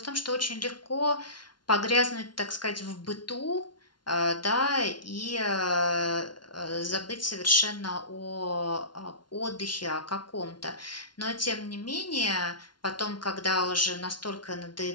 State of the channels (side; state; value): right; late; 0.71 ms